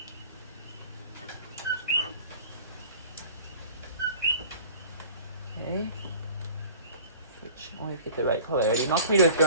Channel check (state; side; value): inverted; both; correlation -0.44